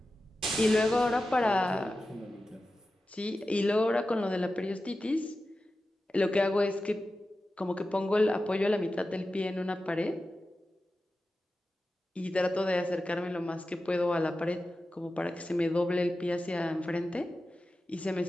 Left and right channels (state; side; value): normal; both; correlation 0.93